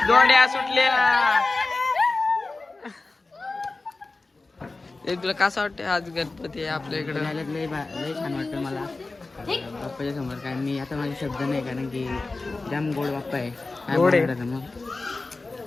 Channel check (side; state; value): right; quieter; 3.5 dB